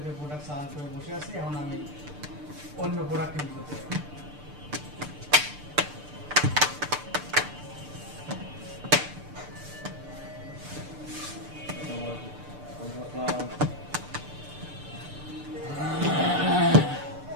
প্রোডাক্ট সার্চ করে বসে আছি, এখন আমি অন্য প্রোডাক্ট কিনতে করতে পারি।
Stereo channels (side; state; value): left; late; 6.8 ms